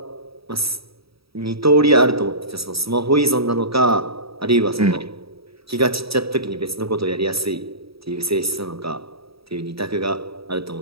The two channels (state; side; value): late; left; 0.76 ms